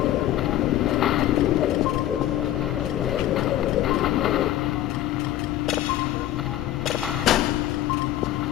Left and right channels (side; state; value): right; quieter; 13.2 dB